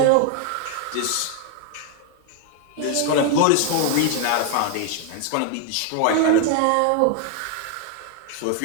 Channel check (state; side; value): different; both; correlation 0.00